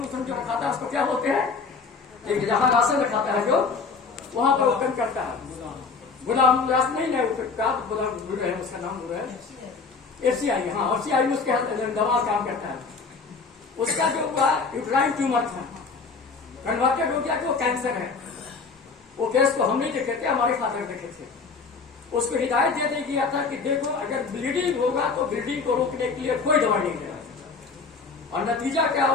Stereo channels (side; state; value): right; quieter; 4.7 dB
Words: उसन जो रखाता है उसको क्या बोलते हैं, एक जहां राशन रखाता है जो वहां पर ओपन करता है, गुलाम व्यास नहीं है, गुलाम गुरु है, उसका नाम गुरु है, एफसीआई, हाँ एफसीआई में उसके दवा काम करता है। उसका जो हुआ यूट्राइन ट्यूमर था, कन्वर्टेड हो गया कि वो कैंसर है। वो केस को हम नहीं देखे थे, हमारे फादर देखे थे। उसको हिदायत दे दी गया था कि देखो अगर ब्लीडिंग होगा तो ब्लीडिंग को रोकने के लिए कोई दवाई नहीं देना। और नतीजा क्या